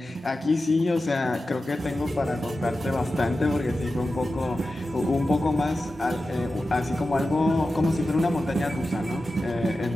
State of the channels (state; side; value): normal; both; correlation 0.93